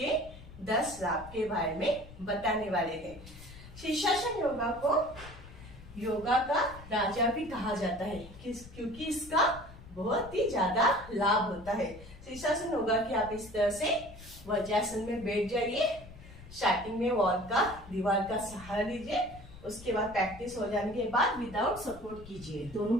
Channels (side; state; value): left; noise; rumble, 17 dB below the sound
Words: 10 लाभ के बारे में बताने वाले हैं। शीर्षासन योगा को योगा का राजा भी कहा जाता है क्योंकि इसका बहुत ही ज्यादा लाभ होता है। शीर्षासन योगा की आप इस तरह से वज्रासन में बैठ जाइए। स्टार्टिंग में दीवार का सहारा लीजिए। उसके बाद प्रैक्टिस हो जाने के बाद विदाउट सपोर्ट कीजिए।